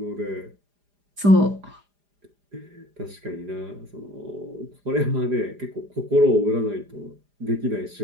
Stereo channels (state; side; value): late; left; 4.9 ms